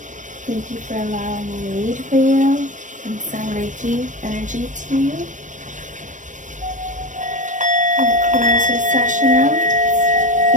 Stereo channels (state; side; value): late; left; 0.37 ms